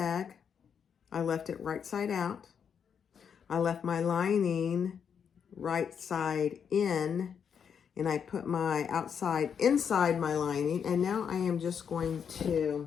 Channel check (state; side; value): quieter; right; 7.3 dB